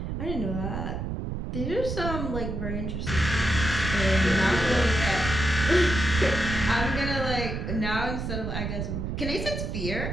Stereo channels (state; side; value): noise; right; rumble, 4 dB below the sound